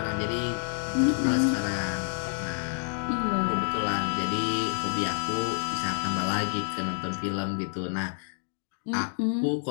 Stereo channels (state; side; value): silent; right; digital silence